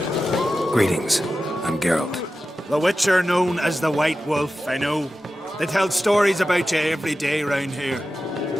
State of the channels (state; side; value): normal; both; correlation 0.93